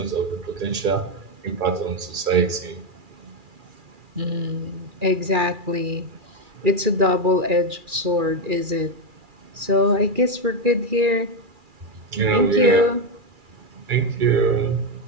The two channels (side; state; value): left; late; 2.4 ms